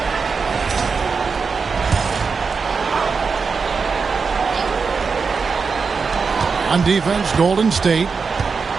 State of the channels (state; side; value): quieter; left; 5.1 dB